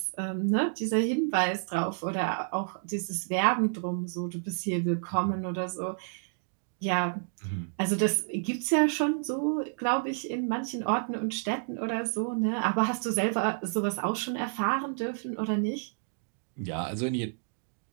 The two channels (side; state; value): left; silent; digital silence